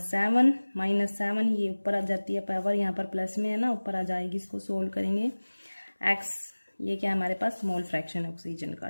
-7, ये ऊपर आ जाती है पावर, यहाँ पर प्लस में है ना, ऊपर आ जाएगी, इसको सोल्व करेंगे x, ये क्या हमारे पास मोल फ्रैक्शन ऑक्सीजन का।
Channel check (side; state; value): both; inverted; correlation -1.00